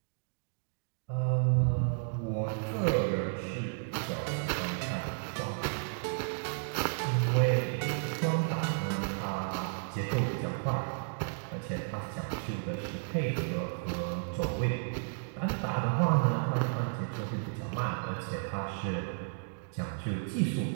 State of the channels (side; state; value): left; silent; digital silence